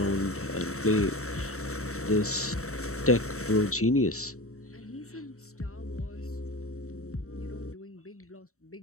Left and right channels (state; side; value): late; right; 0.64 ms